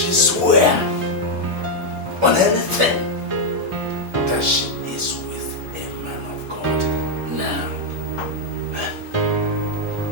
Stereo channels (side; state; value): both; normal; correlation 0.00